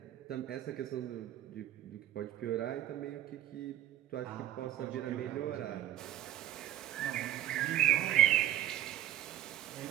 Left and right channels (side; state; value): left; quieter; 12.5 dB